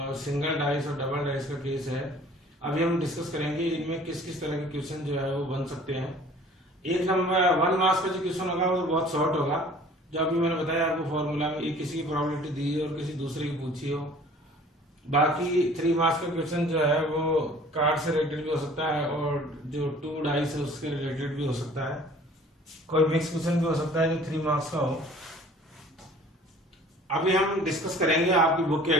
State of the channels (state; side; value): normal; both; correlation 0.50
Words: सिंगल डाइस और डबल डाइस का केस है। अभी हम डिस्कस करेंगे इनमें किस किस तरह के क्वेश्चन जो है वो बन सकते हैं। एक नंबर 1 मार्क्स का जो क्वेश्चन होगा वो बहुत शॉर्ट होगा, जो अभी मैंने बताया आपको फॉर्मूला में, एक किसी की प्रोबेबिलिटी दी और किसी दूसरे की पूछी हो। बाकी 3 मार्क्स का क्वेश्चन जो है वो कार्ड से रिलेटेड भी हो सकता है और जो 2 डाइस है उसके रिलेटेड भी हो सकता है। कोई मिक्स क्वेश्चन भी हो सकता है जो 3 मार्क्स का हो। अभी हम डिस्कस करेंगे आपकी बुक के